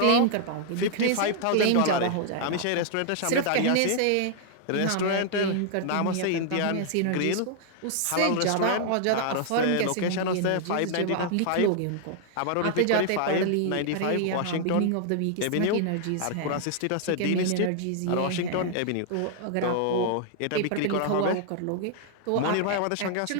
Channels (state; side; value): different; both; correlation 0.00